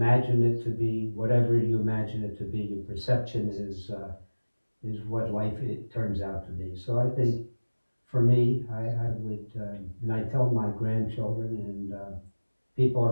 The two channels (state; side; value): inverted; both; correlation -1.00